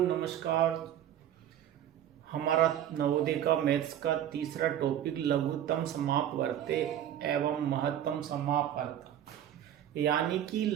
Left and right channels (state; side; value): quieter; left; 10.8 dB